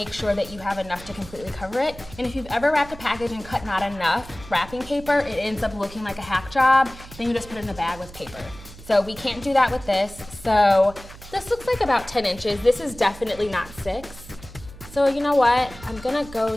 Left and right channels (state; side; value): noise; right; hum, 17 dB below the sound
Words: sure that you have enough to completely cover it. And if you've ever wrapped a package and cut not enough wrapping paper, it ends up looking like a hack job. Then you just put it in a bag with paper. So we can't do that with this. So this looks like about 10 inches. This is definitely not 6. So you know what? I'm gonna go